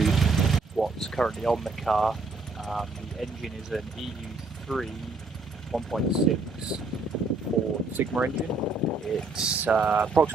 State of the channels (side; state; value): left; quieter; 3.6 dB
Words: what's currently on the car. The engine is an EU3 1.6 Ford Sigma engine. It's